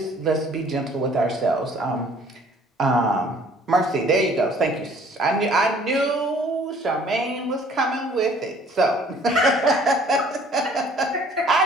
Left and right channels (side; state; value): both; normal; correlation 0.56